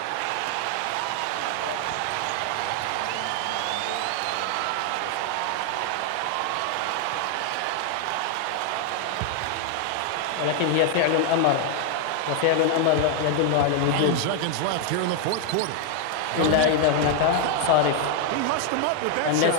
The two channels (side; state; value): both; different; correlation 0.00